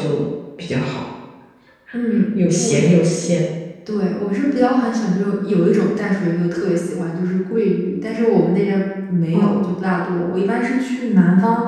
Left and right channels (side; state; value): both; identical; correlation 1.00